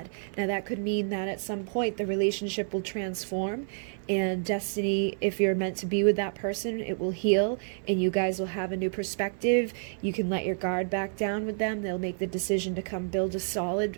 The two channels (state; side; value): silent; left; 58 dB below the other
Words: Now that could mean that at some point the relationship will transform, and destiny, if you're meant to be with that person, it will heal and you guys will have a new perspective. You can let your guard back down with them. They'll make the decision to come build a solid